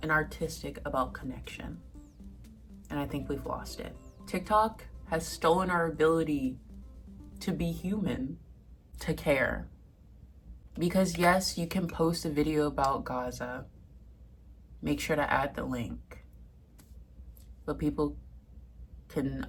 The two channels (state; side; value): identical; both; correlation 1.00